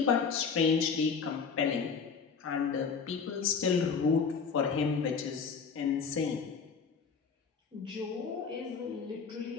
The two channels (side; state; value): right; quieter; 5.7 dB